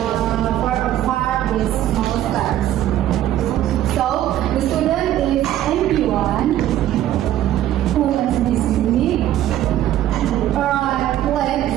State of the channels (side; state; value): left; quieter; 12.6 dB